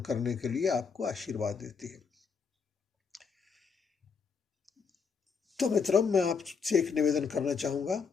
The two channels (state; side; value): quieter; right; 5.7 dB